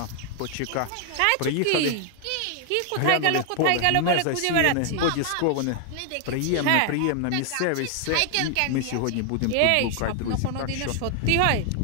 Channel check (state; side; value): different; both; correlation 0.00